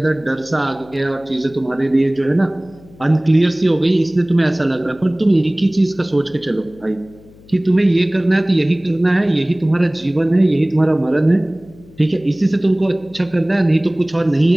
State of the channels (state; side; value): noise; left; hum, 24 dB below the sound